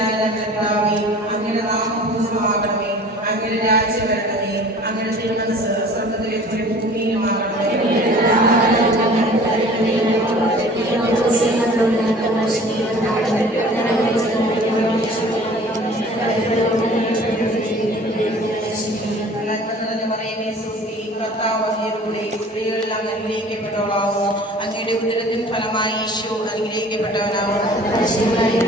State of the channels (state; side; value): normal; both; correlation 0.46